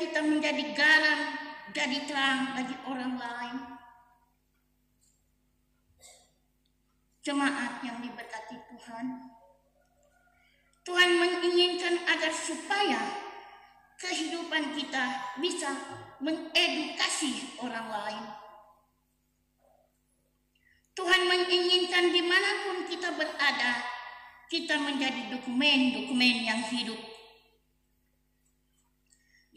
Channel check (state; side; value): identical; both; correlation 1.00